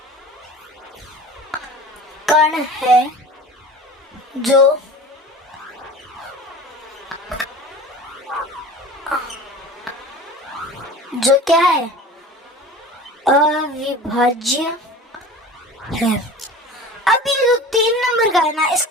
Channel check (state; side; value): normal; both; correlation 0.38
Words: कण है जो क्या है? अविभाज्य है। अब ये जो 3 नंबर का है ना,